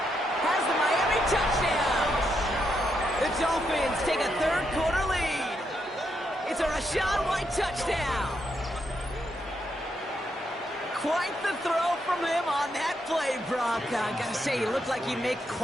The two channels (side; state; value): both; normal; correlation 0.80